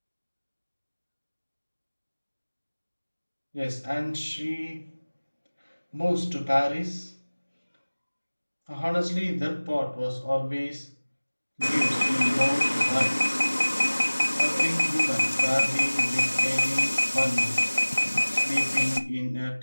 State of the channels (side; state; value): both; inverted; correlation -1.00